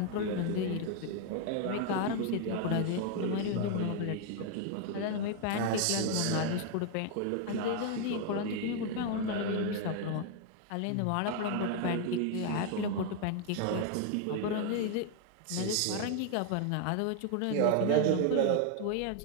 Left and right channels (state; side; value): different; both; correlation 0.01